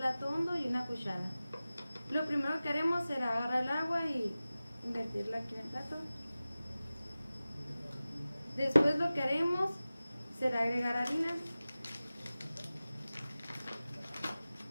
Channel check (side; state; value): both; inverted; correlation -0.97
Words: hondo y una cuchara. Lo primero que haremos será agarrar el agua y invertirla aquí en el plato. Después lo que haremos será agregar harina.